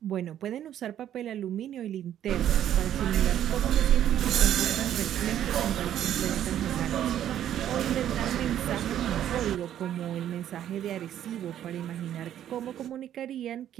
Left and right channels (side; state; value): left; quieter; 10.9 dB